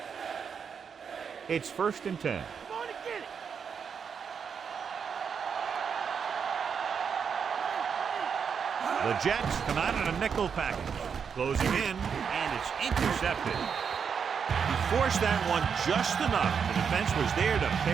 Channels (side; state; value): left; quieter; 6.7 dB